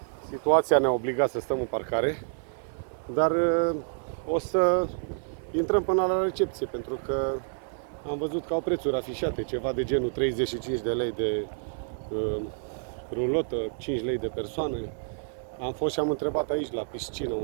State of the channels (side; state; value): left; silent; 55 dB below the other